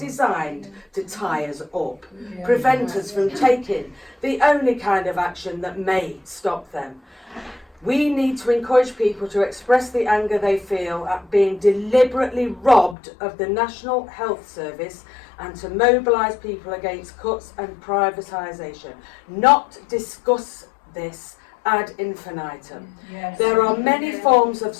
to tie us up, prevent us from taking the only kind of action that may stop them. We need to encourage people to express the anger they feel at being deliberately robbed of the National Health Service and to mobilise people against cuts and privatisation, not discuss this ad infinitum. Yes. There are many forms of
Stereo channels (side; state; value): right; drops out; at 13.0 s